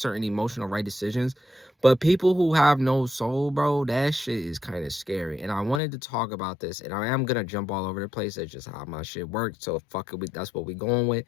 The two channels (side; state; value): right; drops out; at 5.8 s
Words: emotional right decisions. But people who have no soul, bro, that shit is kind of scary. And I wanted to talk about this, and I am gonna jump all over the place. That's just how my shit works. So fuck it, that's what we going with.